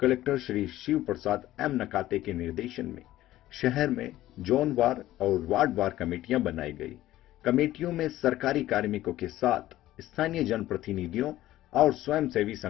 श्री शिव प्रसाद एम नकाते के निर्देशन में शहर में जोनवार और वार्डवार कमेटियां बनाई गई। कमेटियों में सरकारी कार्मिकों के साथ स्थानीय जनप्रतिनिधियों और स्वयंसेवी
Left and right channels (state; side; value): quieter; right; 14.9 dB